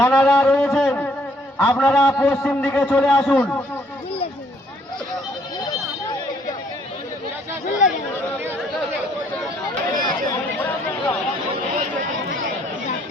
রয়েছেন আপনারা পশ্চিম দিকে চলে আসুন।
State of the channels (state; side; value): normal; both; correlation 0.66